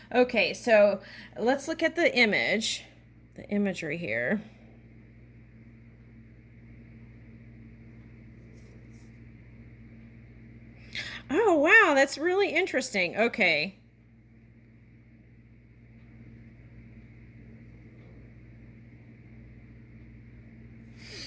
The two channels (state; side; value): identical; both; correlation 1.00